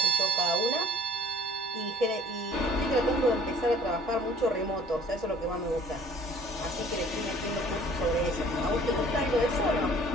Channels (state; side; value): normal; both; correlation 0.53